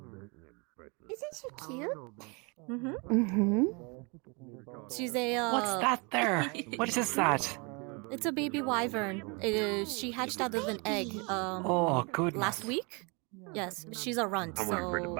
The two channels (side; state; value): left; quieter; 31.1 dB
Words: Isn't she cute? Mm-hmm. She's a. What's that there? What is that? It's a baby wyvern. She hatched out of an egg. Oh, good. Last week. Yes, she's a runt. I'm waiting for the So.